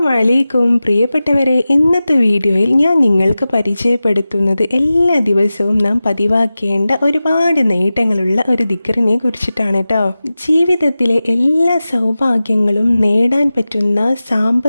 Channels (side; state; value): both; inverted; correlation -0.95